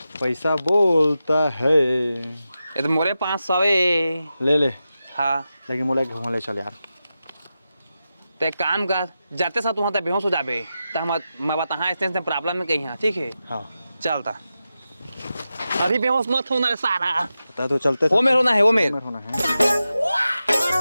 पैसा बोलता है ये तो मोरे 500 है ले ले हाँ लेकिन मोला एक घुमा ले चल यार तो एक काम कर जाते साथ वहाँ तक बेहोश हो जाबे तो हम मैं बता हाँ इससे प्रॉब्लम में कहीं हाँ ठीक है हाँ चलता अभी बेहोश मत होना रे सारा पता तो चलते वो मेरे होना है वो मेरे होना है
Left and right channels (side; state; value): both; inverted; correlation -0.91